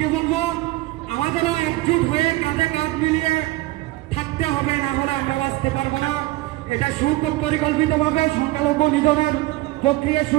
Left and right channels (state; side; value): quieter; left; 18.6 dB